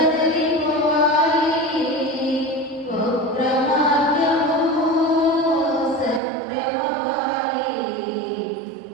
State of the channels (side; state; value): left; drops out; at 6.2 s